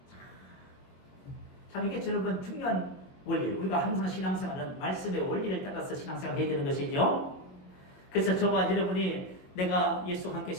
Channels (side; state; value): right; late; 22 ms